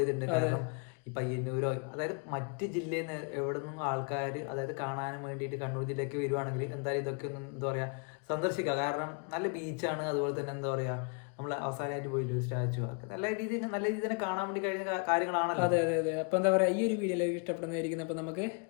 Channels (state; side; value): quieter; right; 35.7 dB